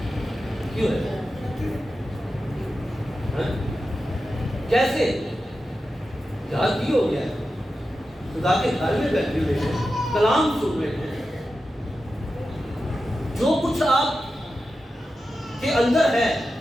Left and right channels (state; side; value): normal; both; correlation 0.91